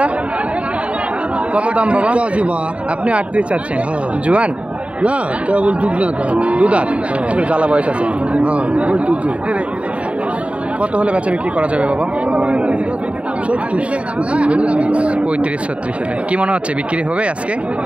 কত দাম বাবা? আপনি 38 চাচ্ছেন? জোয়ান না, কেবল দুধাত, জ্বালা বয়স আছে। কত হলে বেচা বিক্রি করা যাবে বাবা? 35 36 হলে কি মনে হচ্ছে বিক্রি হবে আজকে?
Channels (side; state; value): left; late; 0.062 ms